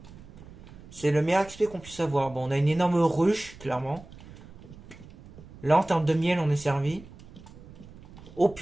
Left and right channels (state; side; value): noise; right; rumble, 19 dB below the sound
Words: C'est le meilleur XP qu'on puisse avoir. Bon, on a une énorme ruche, clairement. Là, en termes de miel, on est servi. Oh